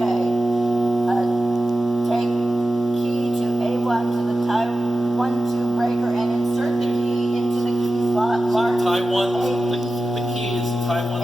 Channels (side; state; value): both; normal; correlation 0.93